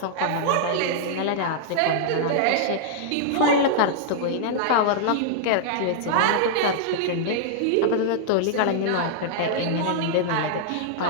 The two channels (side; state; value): both; different; correlation -0.01